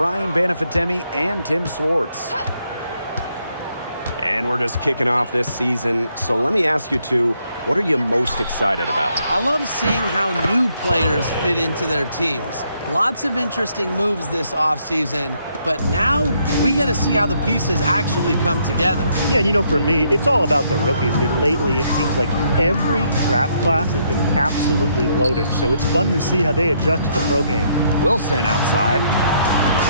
Banafitemi and Tim Swartz. And we're just kicking off this season. So let me ask you two, what are you most excited about? I love seeing how new players fit into their teams. Lots of interesting moves this offseason, but now we get to see how the pieces actually come together. Yeah, and you know, for me, it's all about the rookies. I mean, lately it seems like every draft class has been absolutely loaded, so it's fun to see how they adjust to the pro game. Wilson outside.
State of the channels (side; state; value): both; inverted; correlation -0.72